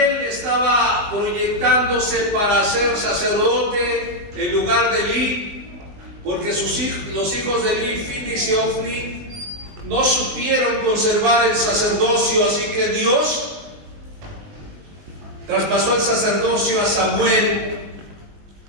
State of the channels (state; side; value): late; left; 19 ms